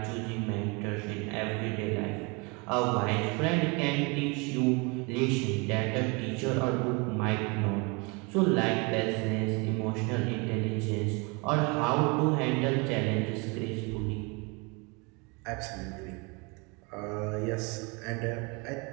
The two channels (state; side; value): quieter; left; 29.6 dB